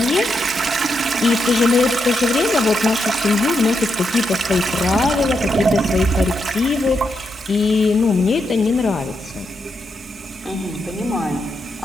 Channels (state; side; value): normal; both; correlation 0.83